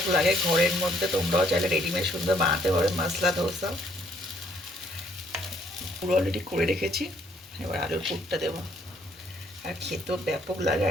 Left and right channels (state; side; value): normal; both; correlation 0.67